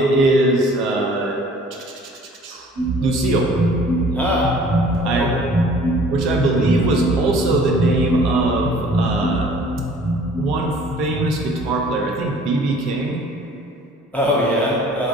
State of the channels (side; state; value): both; normal; correlation 0.52